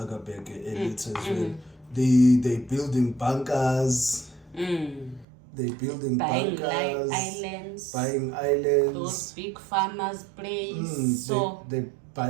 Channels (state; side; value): drops out; left; at 5.2 s